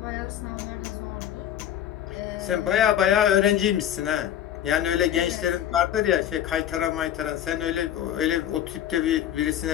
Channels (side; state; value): right; quieter; 10.7 dB